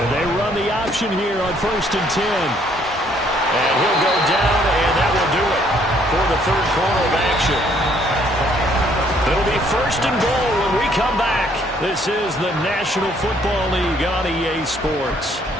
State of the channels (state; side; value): normal; both; correlation 0.65